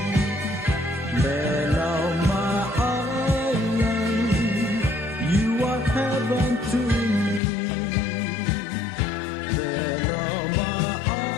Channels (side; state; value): right; drops out; at 7.4 s